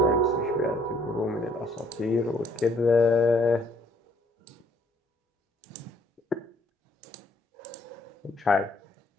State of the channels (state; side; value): normal; both; correlation 0.65